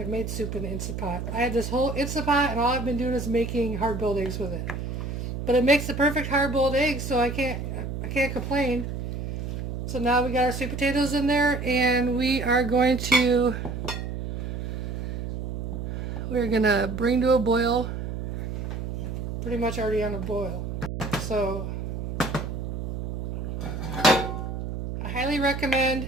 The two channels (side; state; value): right; noise; hum, 5 dB below the sound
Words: made soup in the Instapot. I had this whole Instapot, and all I've been doing is making hard-boiled eggs with it. But it makes the perfect hard-boiled egg, so I can't complain. So now we got our sweet potatoes in there, and we're gonna bring to a boil. Pretty much already on a boil. So I highly